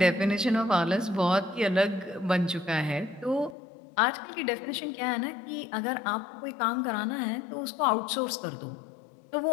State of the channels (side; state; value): right; drops out; at 3.6 s